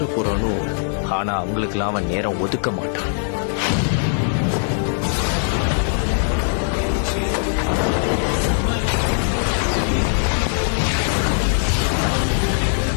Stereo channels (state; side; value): silent; right; 55 dB below the other